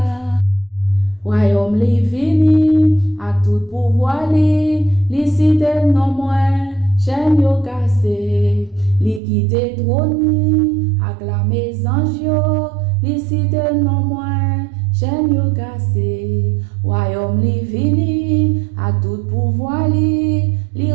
Royaume li vini, a tout pouvoir li cité non moins, chaîne yo cassé, li quitte trône, acclamé ange yo, li cité non moins, chaîne yo cassé. Royaume li vini, a tout pouvoir li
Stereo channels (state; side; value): drops out; left; at 9.2 s